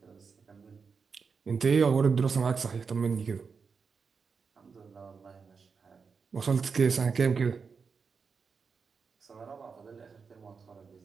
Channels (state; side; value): quieter; left; 5.4 dB